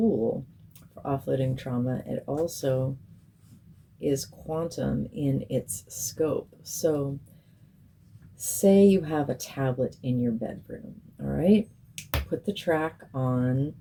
for offloading trauma. It also is quantum in its scope. So say you have a tablet in your bedroom, all right? Put the track on,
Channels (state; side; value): identical; both; correlation 1.00